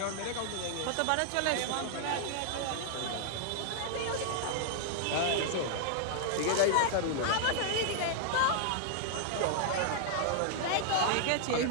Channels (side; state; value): both; different; correlation 0.00